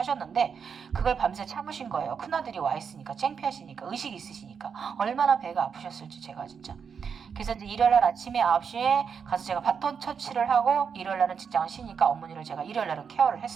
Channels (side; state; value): left; quieter; 6.5 dB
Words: 그걸 밤새 참으신 거예요. 큰아들이 와 있으니까, 창피하시니까, 의식이 있으시니까. 얼마나 배가 아프셨을지 제가 진짜. 그래서 이제 일요일날 아침에 9시에 가서 제가 바톤 터치를 하고, 일요일날은 직장을 쉬니까 어머니를 제가 일요일날은 케어를